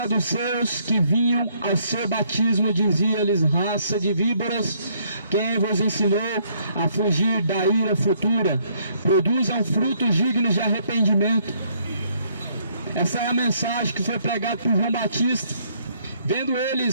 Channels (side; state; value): both; inverted; correlation -0.68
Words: que vinham ao seu batismo, dizia-lhes: raça de víboras, quem vos ensinou a fugir da ira futura? Produzam frutos dignos de arrependimento. Essa é a mensagem que foi pregada por João Batista. Vendo